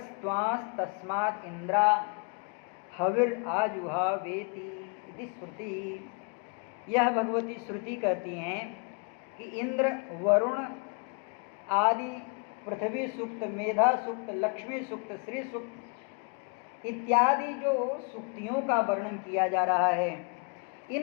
इंद्रा हविर आजुहावेति इति श्रुति। यह भगवती श्रुति कहती हैं कि इंद्र, वरुण आदि पृथ्वी सूक्त, मेधा सूक्त, लक्ष्मी सूक्त, श्री सूक्त इत्यादि जो सूक्तियों का वर्णन किया जा रहा है,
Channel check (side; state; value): right; quieter; 35.5 dB